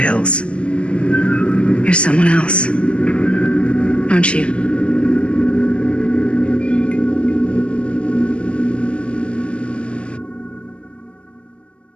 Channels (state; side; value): late; right; 0.055 ms